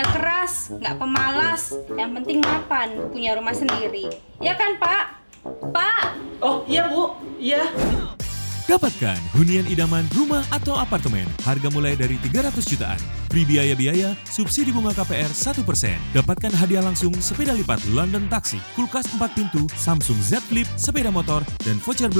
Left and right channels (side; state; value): both; inverted; correlation -1.00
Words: keras, nggak pemalas. Yang penting mapan, punya rumah sendiri. Ya kan Pak? Pak! Oh iya Bu, iya. Dapatkan hunian idaman rumah atau apartemen. Harga mulai dari 300 jutaan. Free biaya-biaya, subsidi bunga KPR 1%. Dapatkan hadiah langsung sepeda lipat London Taxi, kulkas 4 pintu, Samsung Z Flip, sepeda motor, dan voucher